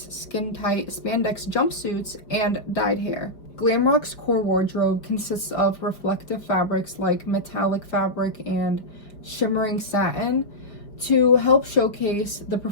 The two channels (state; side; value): late; right; 5.0 ms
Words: skin-tight spandex jumpsuits, and dyed hair. Glam rock's core wardrobe consists of reflective fabrics like metallic fabric and shimmering satin to help showcase the